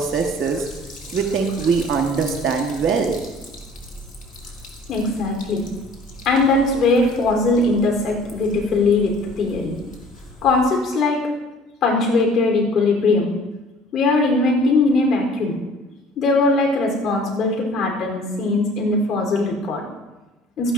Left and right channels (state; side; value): normal; both; correlation 0.51